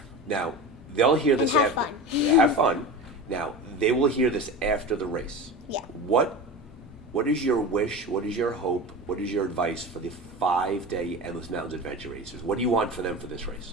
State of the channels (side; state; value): both; normal; correlation 0.29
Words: Now, they'll hear this have after. fun. Have fun. Now, they will hear this after the race. Yeah. What is your wish? What is your hope? What is your advice for the 5-day Endless Mountains Adventure Racers? What do you want for them for this